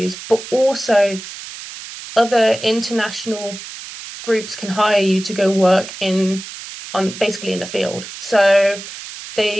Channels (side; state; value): right; noise; hiss, 12 dB below the sound